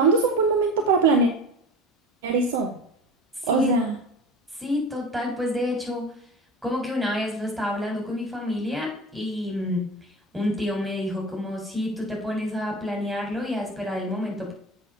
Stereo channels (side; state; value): both; normal; correlation 0.33